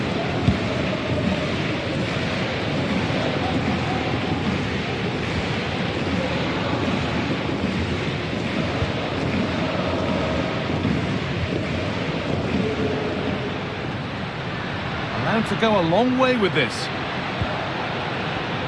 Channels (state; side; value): identical; both; correlation 1.00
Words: To go a long way with this.